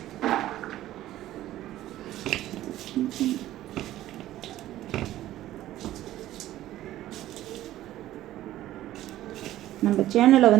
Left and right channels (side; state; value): left; quieter; 14.1 dB